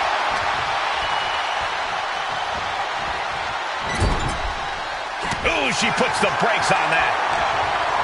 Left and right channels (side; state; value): both; identical; correlation 1.00